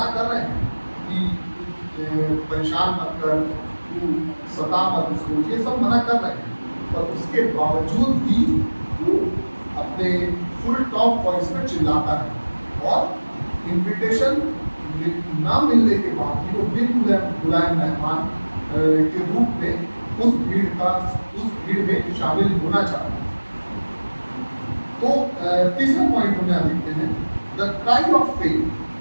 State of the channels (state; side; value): inverted; both; correlation -1.00